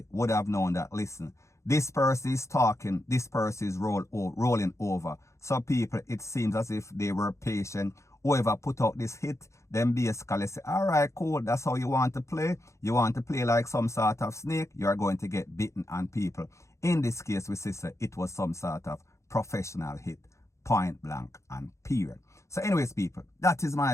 would have known that, listen, this person is talking, this person is rolling over. So people, it seems as if they were patient. Whoever put out this hit, then basically say, all right, cool, that's how you want to play. You want to play like some sort of snake, you are going to get bitten. And people, in this case, we say it was some sort of professional hit, point blank and period. So anyways, people, that is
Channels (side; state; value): right; late; 0.14 ms